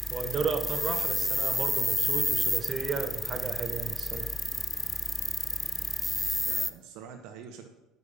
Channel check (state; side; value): normal; both; correlation 0.91